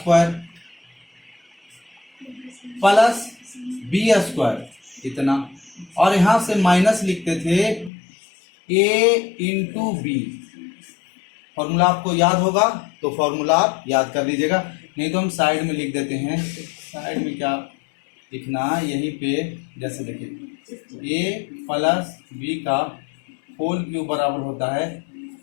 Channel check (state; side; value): drops out; right; at 7.9 s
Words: प्लस b स्क्वायर इतना, और यहां से माइनस लिखते थे a इंटू बी। फॉर्मूला आपको याद होगा तो फॉर्मूला आप याद कर लीजिएगा, नहीं तो हम साइड में लिख देते हैं। साइड में क्या लिखना, यहीं पे जैसे देखिए a प्लस b का होल क्यूब बराबर होता है